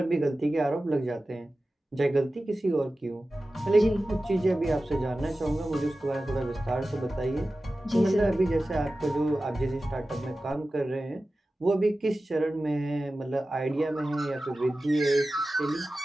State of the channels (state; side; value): normal; both; correlation 0.95